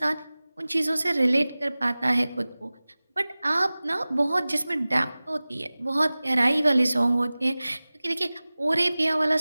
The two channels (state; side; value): inverted; both; correlation -0.98